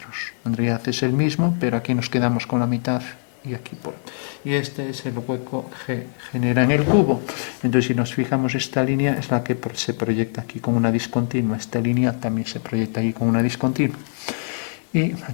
En realidad es el mismo, pero aquí nos quedamos con la mitad y aquí por. Y este es el hueco que genera en el cubo. Entonces, si nos fijamos, esta línea es la que se proyecta aquí con una discontinua. Esta línea también se proyecta aquí con una discontinua. Y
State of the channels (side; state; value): right; silent; 62 dB below the other